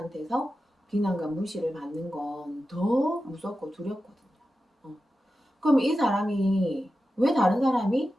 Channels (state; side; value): normal; both; correlation 0.92